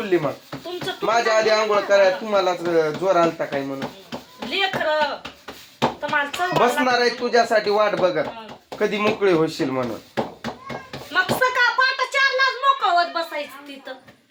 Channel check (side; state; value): both; identical; correlation 1.00